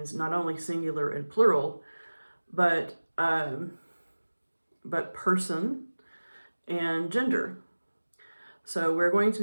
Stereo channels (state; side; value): inverted; both; correlation -1.00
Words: not only singular and plural, but person and gender. So we're going to